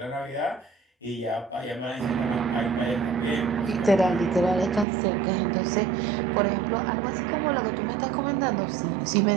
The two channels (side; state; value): left; drops out; at 4.9 s